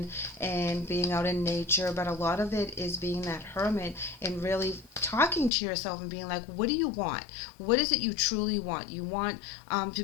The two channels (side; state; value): right; drops out; at 5.5 s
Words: and being out in nature, but a lot of it is being that hermit and really talking to yourself and being like, what do you want? What is it you truly want? You want to